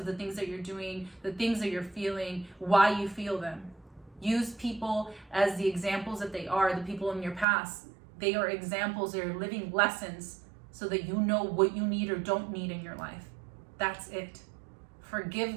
the things that you're doing, the things that you're feeling, why you feel them. Use people as the examples that they are, the people in your past. They are examples, they are living lessons so that you know what you need or don't need in your life. That's it. Forgive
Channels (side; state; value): left; drops out; at 7.5 s